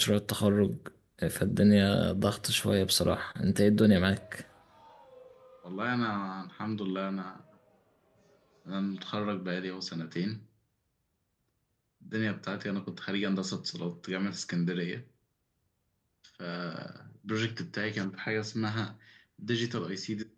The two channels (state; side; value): identical; both; correlation 1.00